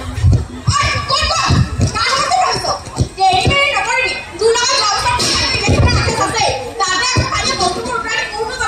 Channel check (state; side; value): identical; both; correlation 1.00